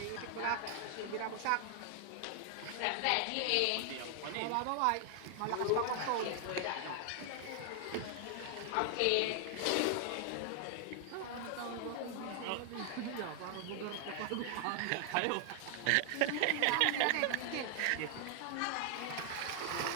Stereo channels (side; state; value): both; different; correlation 0.00